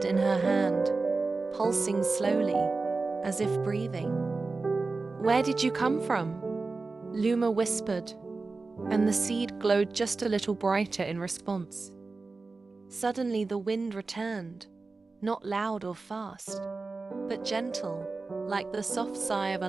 in her hand, pulsing slowly, as if breathing. "Where did you come from?" Luma whispered, and the seed glowed just a little brighter in response. Suddenly the wind returned, not loud or fast, but gentle, like the soft sigh of a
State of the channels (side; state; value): left; quieter; 3.8 dB